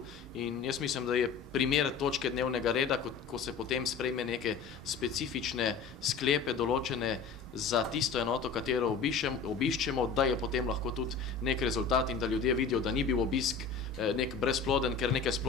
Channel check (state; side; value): quieter; right; 5.5 dB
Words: in jaz mislim, da je primer točke dnevnega reda, ko se potem sprejme neke specifične sklepe določene za tisto enoto, katero obiščemo, da je potem lahko tudi nek rezultat in da ljudje vidijo, da ni bil obisk nek brezploden, ker neke